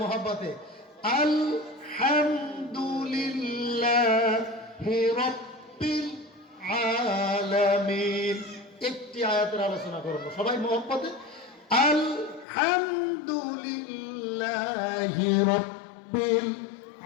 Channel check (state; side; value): drops out; right; at 12.5 s